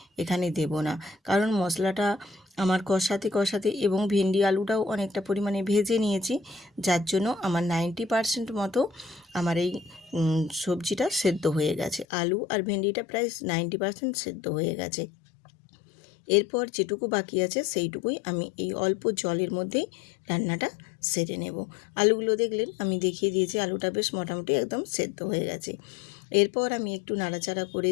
এখানে দেব না, কারণ মশলাটা আমার কষাতে কষাতে এবং ভেন্ডি আলুটাও অনেকটা পরিমাণে ভেজে নিয়েছি, যার জন্য আমার 90% মতো আমার এই সবজিটা সেদ্ধ হয়ে গেছে। আলু আর ভেন্ডিটা প্রায় 90% সেদ্ধ হয়ে গেছে। এরপর যেটুকু বাকি আছে সেইটুকুই আমি এই অল্প জলের মধ্যেই রান্নাটা সেরে নেব। আলুগুলো দেখলেন আমি দেখিয়ে দিয়েছি, আলুটা বেশ মোটামুটি একদম সেদ্ধ হয়ে গেছে। এরপর আমি একটু নাড়াচাড়া করে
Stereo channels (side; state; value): right; drops out; at 12.1 s